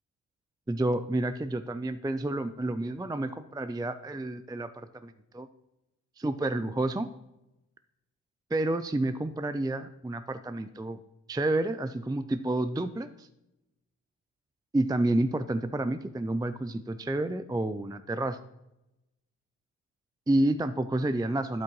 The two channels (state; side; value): normal; both; correlation 0.85